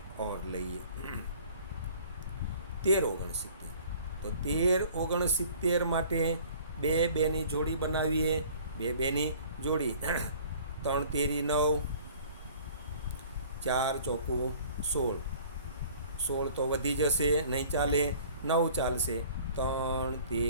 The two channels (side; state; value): both; inverted; correlation -0.51